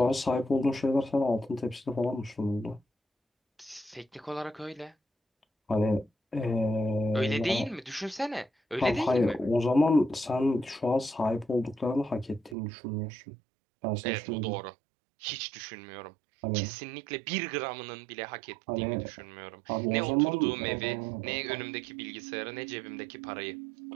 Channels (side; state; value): left; drops out; at 12.6 s